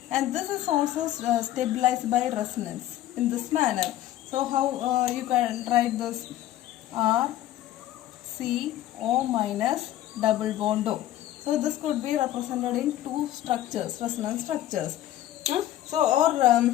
and this is also stabilized by resonance in this manner. So how you can write this? RCO minus double bond O. So this could be represented in two structures, resonance structures. So or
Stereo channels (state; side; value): quieter; right; 13.6 dB